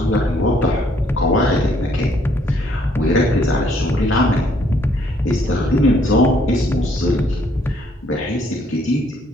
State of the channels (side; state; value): both; normal; correlation 0.66